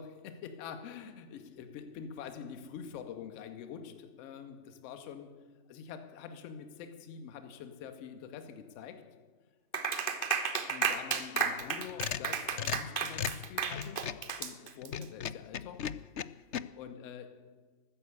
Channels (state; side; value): late; right; 2.5 ms